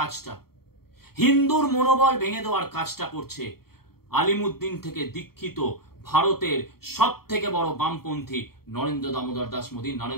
হিন্দুর মনোবল ভেঙে দেওয়ার কাজটা করছে আলিমুদ্দিন থেকে দীক্ষিত ভারতের সব থেকে বড় বামপন্থী নরেন্দ্র দামোদর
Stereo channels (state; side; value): late; right; 0.94 ms